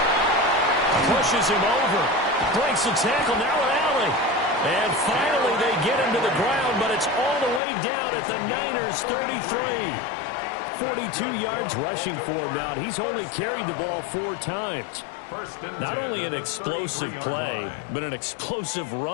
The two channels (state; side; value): drops out; right; at 7.6 s